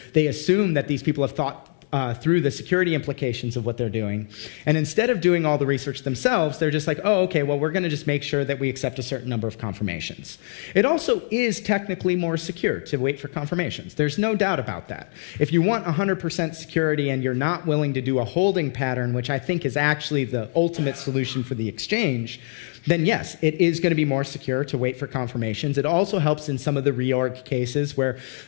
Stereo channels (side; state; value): right; silent; 61 dB below the other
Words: assume that these people have thought through the security implications of what they're doing. And instead of doing all the research themselves, they're just like, oh, okay, well, we're going to just make sure that we accept a certain number of confirmations. It also is technically more secure to wait for confirmations. There's no doubt about that. If you want 100% security and you're not willing to do a holding pattern, which I think is actually the ultimate solution for the exchange, then yes, it is going to be more secure to wait for confirmations. It also helps in some of the reorg cases where